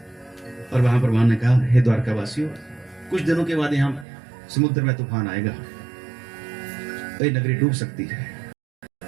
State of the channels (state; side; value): drops out; left; at 4.0 s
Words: और वहां पर भगवान ने कहा हे द्वारका वासियों, कुछ दिनों के बाद यहां समुद्र में तूफान आएगा, ये नगरी डूब सकती है,